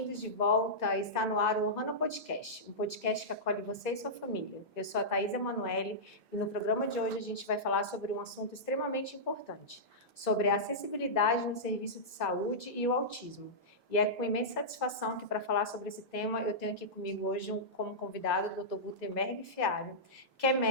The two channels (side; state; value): both; normal; correlation -0.13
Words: de volta. Está no ar o Ohana Podcast, um podcast que acolhe você e sua família. Eu sou a Thaís Emanuele e no programa de hoje a gente vai falar sobre um assunto extremamente importante, sobre a acessibilidade no serviço de saúde e o autismo. E é com imensa satisfação que, para falar sobre esse tema, eu tenho aqui comigo hoje como convidado o Dr. Gutenberg Fiário, que é